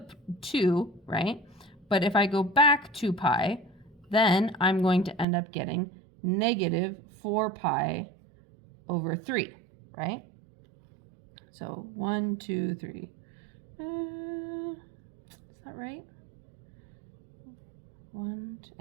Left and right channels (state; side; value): drops out; left; at 5.2 s